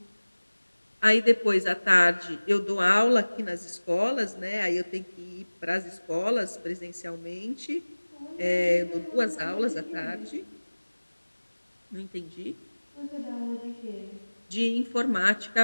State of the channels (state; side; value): inverted; both; correlation -1.00